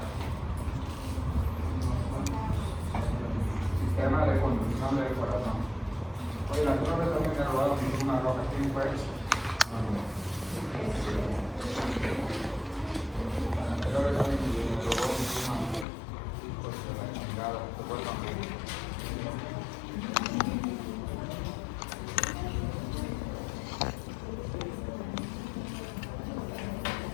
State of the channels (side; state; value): right; drops out; at 15.9 s